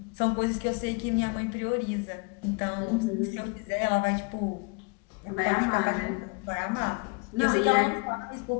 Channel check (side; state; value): right; quieter; 32.0 dB